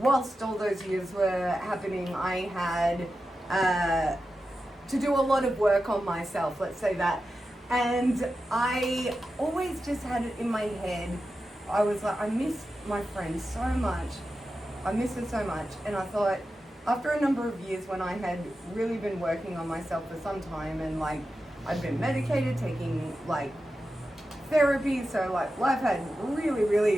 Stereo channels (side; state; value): both; normal; correlation 0.91